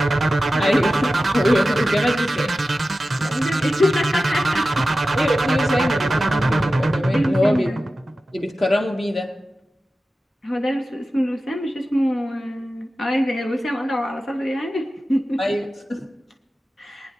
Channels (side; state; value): both; normal; correlation 0.94